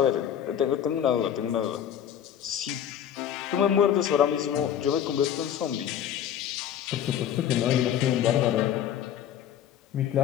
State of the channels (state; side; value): quieter; right; 9.8 dB